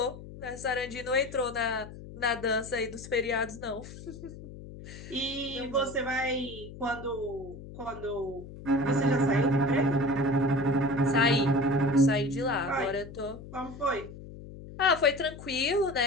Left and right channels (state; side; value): noise; left; hum, 14 dB below the sound